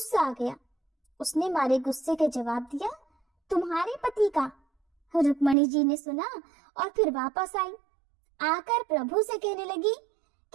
आ गया। उसने मारे गुस्से के जवाब दिया, तुम्हारे पति का। रुक्मणी जी ने सुना और फिर वापस आई, आकर प्रभु से कहने लगी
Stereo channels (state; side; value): drops out; left; at 5.6 s